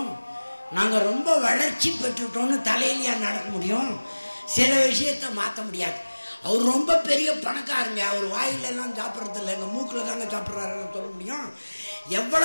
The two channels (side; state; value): both; inverted; correlation -1.00